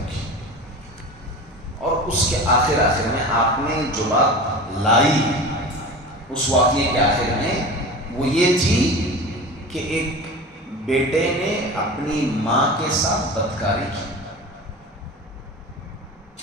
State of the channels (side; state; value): both; normal; correlation 0.33